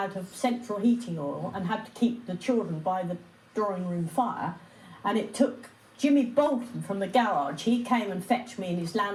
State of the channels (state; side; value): identical; both; correlation 1.00